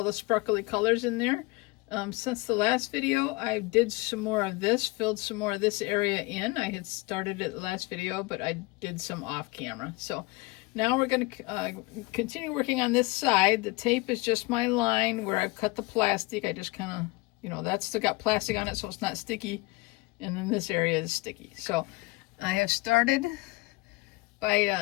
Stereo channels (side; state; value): right; quieter; 23.7 dB